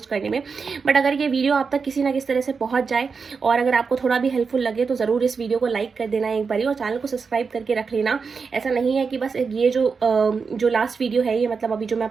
करने में, बट अगर ये वीडियो आप तक किसी ना किसी तरह से पहुंच जाए और अगर आपको थोड़ा भी हेल्पफुल लगे तो ज़रूर इस वीडियो को लाइक कर देना एक बारी और चैनल को सब्सक्राइब करके रख लेना। ऐसा नहीं है कि बस ये जो लास्ट वीडियो है ये मतलब अभी जो मैं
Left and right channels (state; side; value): quieter; left; 5.2 dB